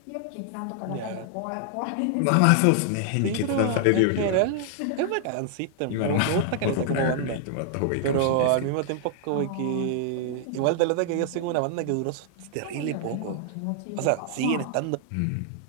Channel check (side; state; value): both; different; correlation -0.01